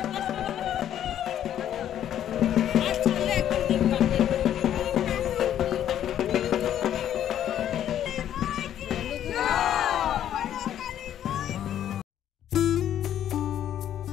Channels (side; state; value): right; quieter; 10.7 dB